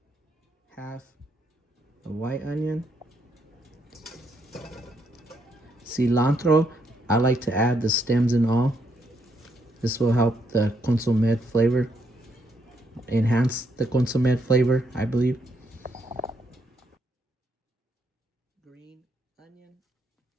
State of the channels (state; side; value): normal; both; correlation 0.75